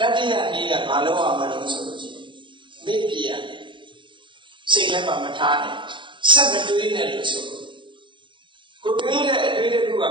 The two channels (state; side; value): late; left; 0.23 ms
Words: တိယနည်းကဘာလို့အောင်မလို့ဆိုလို့ရှိရင်မေ့ပြရစိတ်ထဲမှာမထားနဲ့ဆက်မတွေးနဲ့လို့ဆိုလို့ကိုတွေးတဲ့အတွေးတစ်ခုက